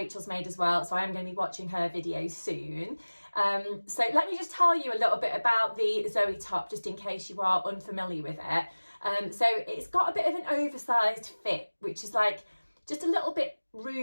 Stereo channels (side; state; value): both; inverted; correlation -1.00